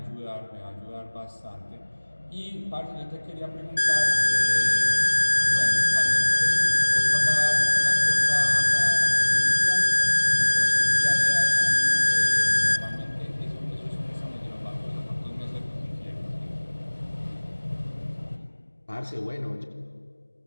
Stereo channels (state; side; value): inverted; both; correlation -1.00